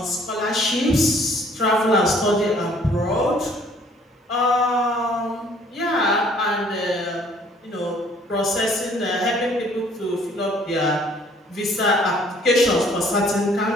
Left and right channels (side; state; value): both; normal; correlation 0.59